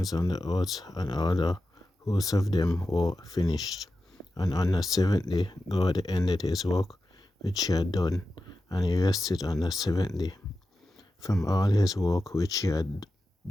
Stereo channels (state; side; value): normal; both; correlation 0.92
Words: and the earth and all the hosts of them were finished. And on the seventh day God ended his work which he had done, and he rested on the seventh day from all his work which he had